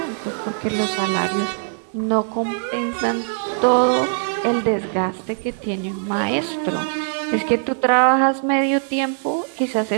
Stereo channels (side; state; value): left; silent; digital silence